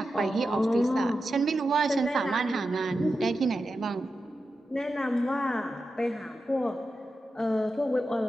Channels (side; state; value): both; normal; correlation 0.90